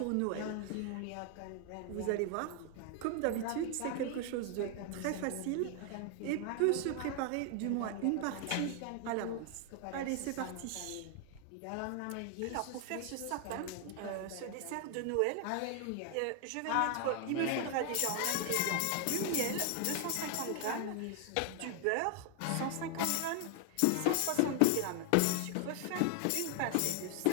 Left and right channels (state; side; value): different; both; correlation 0.00